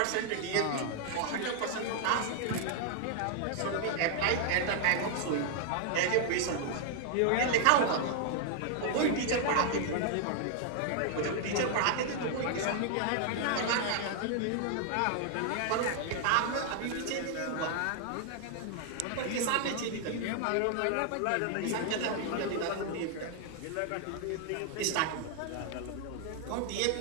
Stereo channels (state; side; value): different; both; correlation 0.00